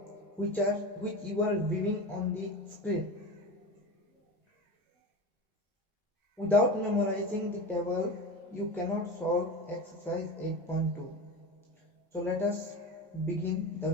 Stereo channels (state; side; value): normal; both; correlation 0.28